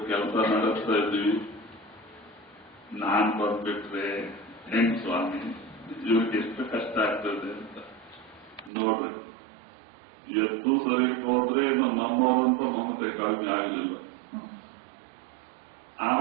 ಕೆಲಸ ನಡೆಸ್ತಾ ಇದ್ವಿ, ನಾನ್ ಬಂದ್ಬಿಟ್ರೆ ಹೆಂಗ್ ಸ್ವಾಮಿ, ಇವ್ರಿಗೆ ಎಷ್ಟು ಕಷ್ಟ ಆಗ್ತದೆ ಅಂತ. ನೋಡ್ರಿ, ಎತ್ತು ಶರೀರಕ್ಕೆ ಹೋದ್ರೆ ಇನ್ನು ನಮ್ಮವರಂತೂ ಮಮತೆ ಕಡಿಮೆ ಆಗಲಿಲ್ಲ.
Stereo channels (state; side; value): drops out; left; at 8.7 s